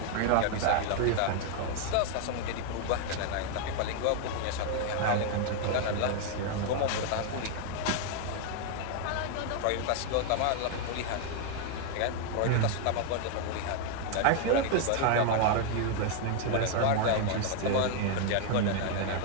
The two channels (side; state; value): both; different; correlation 0.00